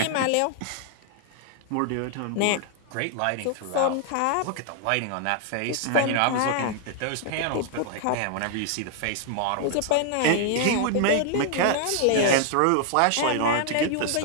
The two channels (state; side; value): different; both; correlation 0.00